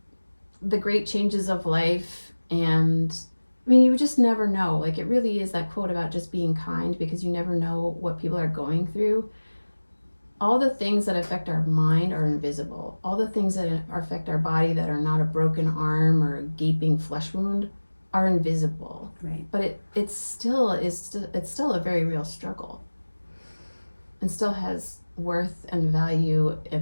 the great changes of life, and I mean, you just never know. Like, it really is that quote about just being kind, because you never know what people are going through. All the things that affect our mind are invisible. All the things that affect our body that are not a broken arm or a gaping flesh wound are invisible. Right. But it's still a very real struggle, and still has worth and value in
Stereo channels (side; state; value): both; inverted; correlation -1.00